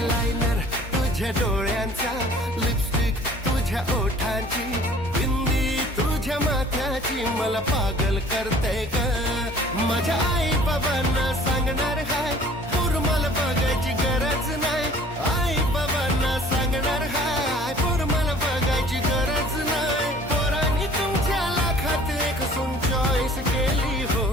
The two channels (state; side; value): normal; both; correlation 0.51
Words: तुझ्या डोळ्यांचा लिपस्टिक तुझ्या ओठांची बिंदी तुझ्या माथ्याची मला पागल करते ग माझ्या आई बाबांना सांगणार हाय पूर मला बघायची गरज नाही आई बाबांना सांगणार हाय पूर मला बघायची गरज नाही पोरांनी तुमच्या लाखात एक सून चॉईस केली हो